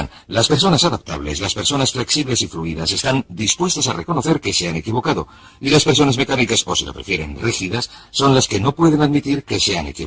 las personas adaptables, las personas flexibles y fluidas están dispuestas a reconocer que se han equivocado, y las personas mecánicas, o si lo prefieren, rígidas, son las que no pueden admitir que se han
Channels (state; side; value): identical; both; correlation 1.00